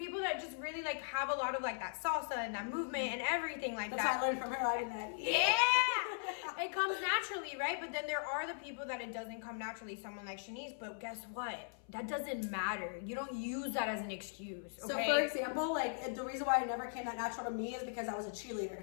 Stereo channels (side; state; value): right; silent; 52 dB below the other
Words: that just really like have a lot of like that salsa and that movement and everything like That's that. what I learned from her. I did that. Yeah, it comes naturally, right? But then there are the people that it doesn't come naturally. Someone like Shanice, but guess what? That doesn't matter. You don't use that as an excuse. Okay? So for example, like the reason why it never came that natural to me is because I was a